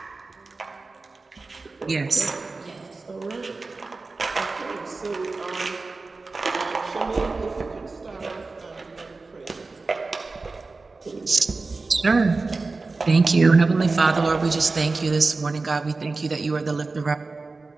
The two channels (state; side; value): quieter; left; 3.7 dB